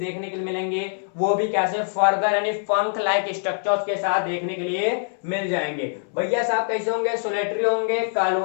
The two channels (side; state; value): right; silent; 63 dB below the other